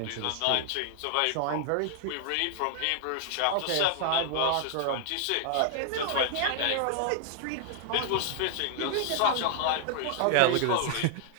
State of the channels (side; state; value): both; different; correlation 0.00